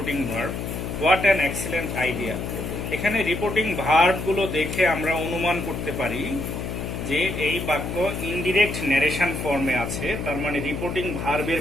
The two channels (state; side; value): noise; left; hum, 5 dB below the sound